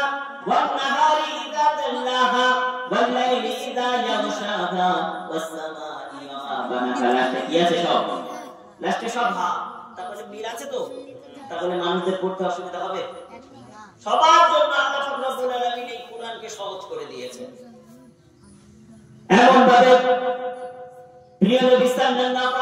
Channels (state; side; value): identical; both; correlation 1.00